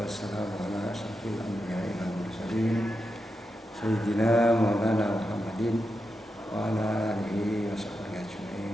wassalamu ala asyrofil anbiya'i wal mursalin sayyidina Maulana Muhammadin wa ala alihi wa sahbihi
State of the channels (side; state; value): both; normal; correlation 0.88